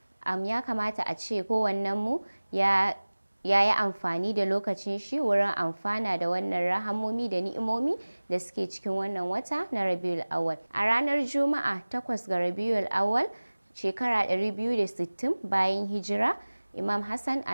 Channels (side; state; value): both; inverted; correlation -1.00